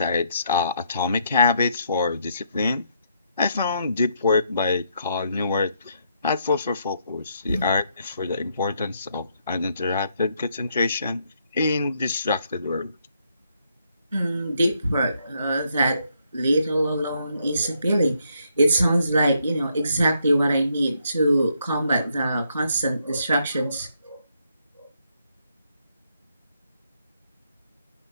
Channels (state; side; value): inverted; both; correlation -0.74